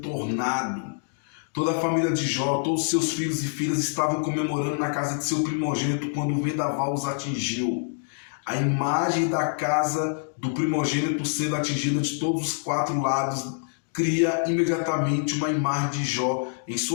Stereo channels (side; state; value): right; silent; digital silence